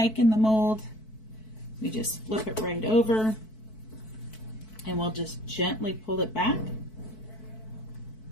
in the mold. We just flip it right over, and we'll just gently pull it back.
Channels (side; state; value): right; late; 4.6 ms